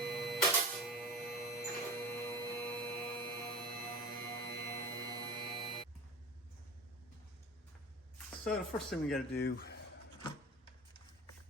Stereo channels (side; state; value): both; normal; correlation 0.33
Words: So the first thing we got to do